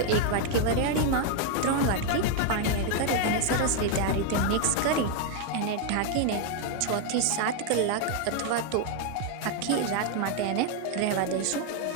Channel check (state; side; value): different; both; correlation 0.00